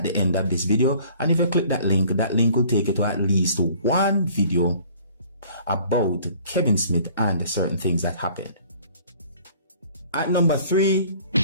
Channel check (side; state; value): both; inverted; correlation -0.53